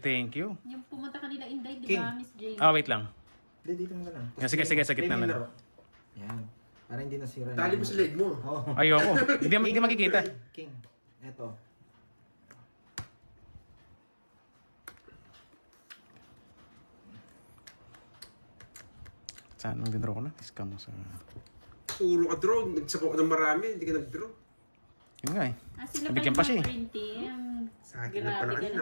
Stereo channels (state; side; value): inverted; both; correlation -1.00